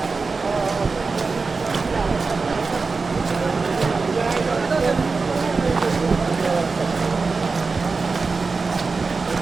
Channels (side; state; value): left; quieter; 4.3 dB